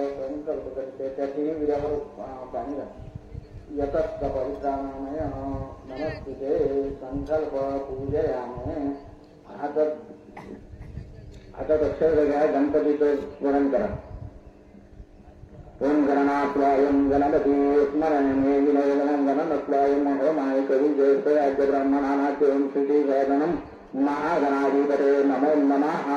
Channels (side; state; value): both; identical; correlation 1.00